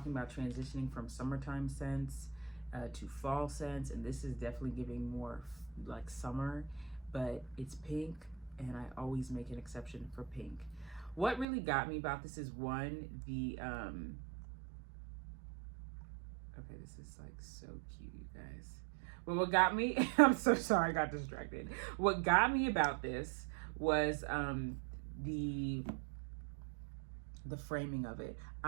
about transitioning from summertime scents to fall scents, and this is definitely giving more like summer, but it's pink, and I always make an exception for pink. What really got me about this is one, the okay, this is like so cute, you guys. But what got me, I'm so sorry, I got distracted. What got me about this was the framing of it.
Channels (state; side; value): drops out; left; at 11.5 s